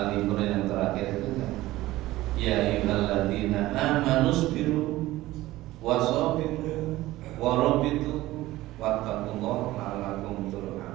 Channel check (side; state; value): left; quieter; 17.0 dB